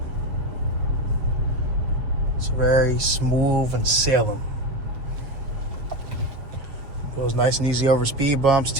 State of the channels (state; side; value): late; left; 7.2 ms